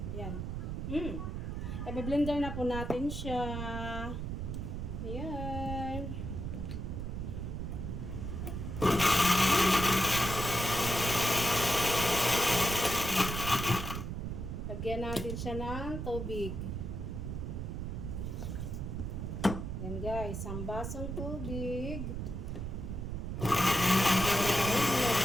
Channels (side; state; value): right; noise; rumble, 4 dB below the sound